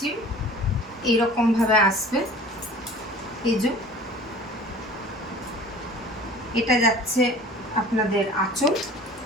এইরকম ভাবে আসবে। এই যে এটা যাচ্ছে আপনাদের আঁচল,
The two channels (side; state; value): both; normal; correlation 0.44